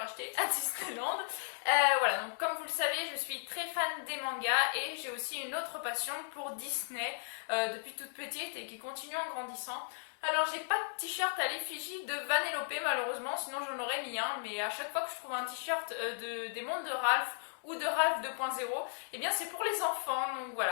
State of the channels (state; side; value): silent; right; digital silence